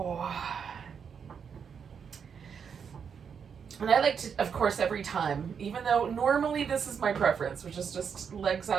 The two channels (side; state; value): left; quieter; 6.8 dB